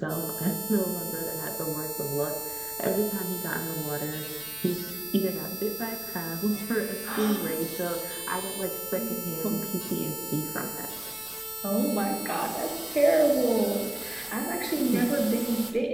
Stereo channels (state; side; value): noise; left; rumble, 24 dB below the sound